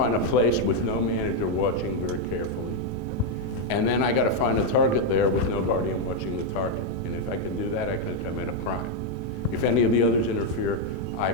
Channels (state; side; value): normal; both; correlation 0.01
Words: a place with no manager watching very carefully. And then I got to find a target there with no guardian watching the target. And if I can do that, I can commit a crime. If any of the others interfere, I